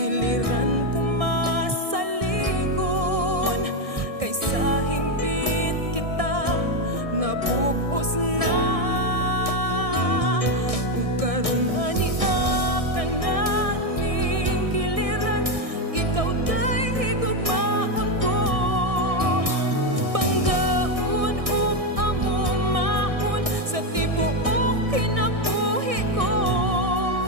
kumasaligon, kay sa hingpit kita nabubos na. Ug karong ania ka na ning kiliran, ikaw dahi gugmaon ko. Panggaon ug amumahon sa tibuok kinabuhi ko.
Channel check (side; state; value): left; late; 1.6 ms